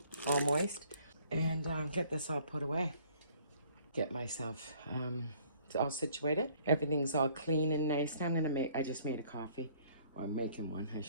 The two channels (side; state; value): both; inverted; correlation -0.58